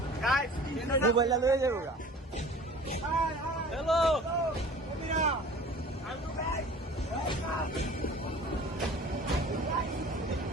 মোবাইলটা লয়ে যাবো গা. হ্যালো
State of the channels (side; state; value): both; normal; correlation 0.44